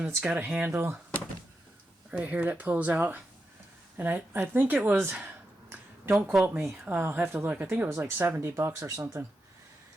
it's got a handle right here that pulls out. And I think it was, don't quote me, I'll have to look. I think it was like $70 or something.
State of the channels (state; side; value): normal; both; correlation 0.87